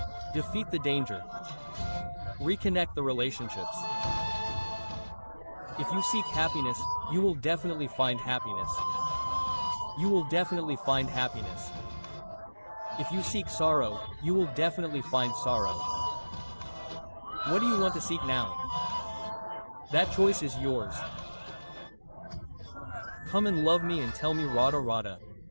Defeat the danger. Reconnect the relationships. If you seek happiness, you will definitely find happiness. You will definitely find happiness. If you seek sorrow, you will definitely find sorrow. What do you want to seek now? That choice is yours. Come and love me and tell me Radha Radha.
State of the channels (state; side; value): inverted; both; correlation -1.00